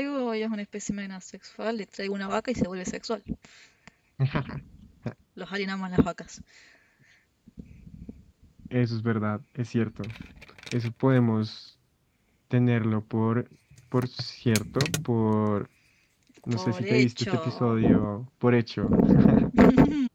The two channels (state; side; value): identical; both; correlation 1.00